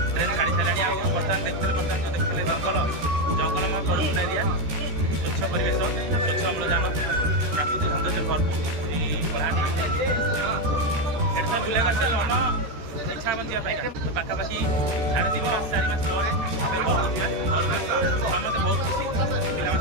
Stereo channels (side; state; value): left; late; 13 ms